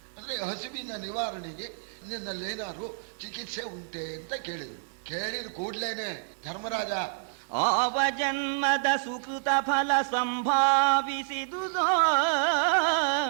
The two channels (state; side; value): silent; left; 59 dB below the other